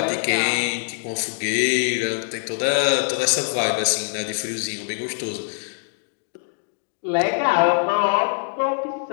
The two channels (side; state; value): right; silent; digital silence